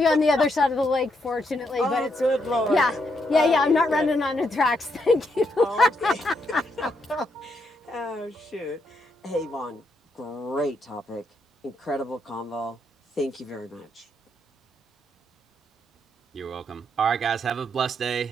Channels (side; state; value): both; normal; correlation 0.78